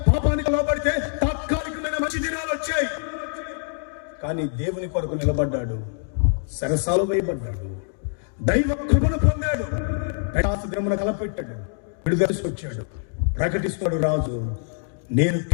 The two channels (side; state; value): right; silent; digital silence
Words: పాపానికో లోపడితే తాత్కాలికమైన మంచి దినాలు వచ్చాయి. కానీ దేవుని కొరకు నిలబడ్డాడు, సరసాలు వేయబడ్డాడు, దైవ కృపను పొందాడు, దినమున కలపెట్టాడు, విడుదల వచ్చాడు. ప్రకటిస్తాడు రాజు, నేను